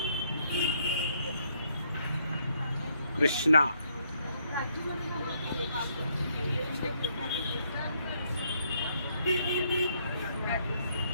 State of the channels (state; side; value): inverted; both; correlation -0.71